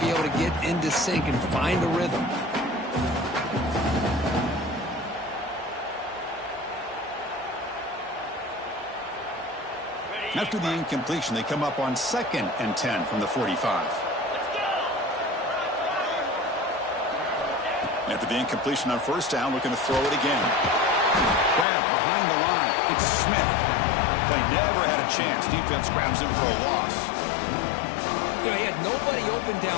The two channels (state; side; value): drops out; right; at 21.7 s